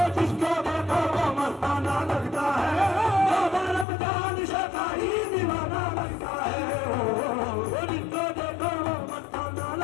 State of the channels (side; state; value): right; drops out; at 3.9 s